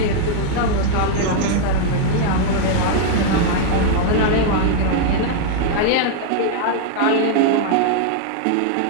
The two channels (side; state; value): both; different; correlation 0.00